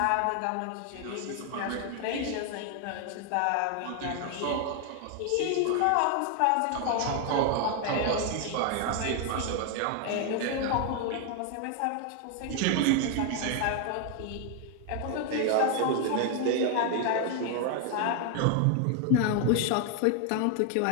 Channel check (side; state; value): both; different; correlation 0.00